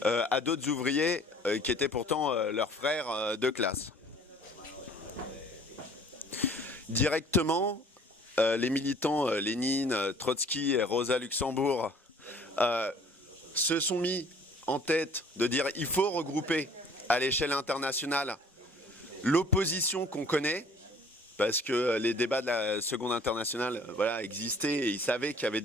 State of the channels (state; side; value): normal; both; correlation 0.53